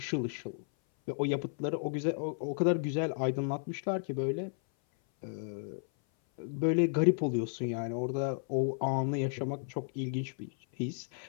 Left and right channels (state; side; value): silent; right; 56 dB below the other